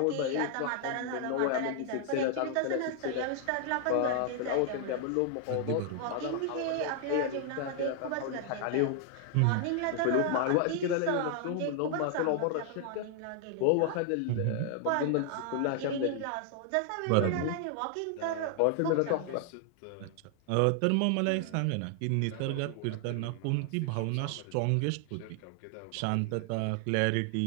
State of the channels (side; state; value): both; different; correlation 0.00